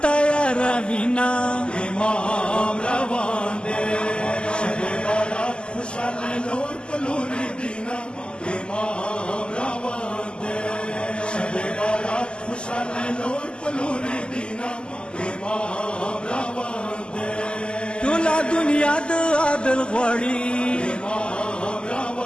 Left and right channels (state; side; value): late; right; 0.050 ms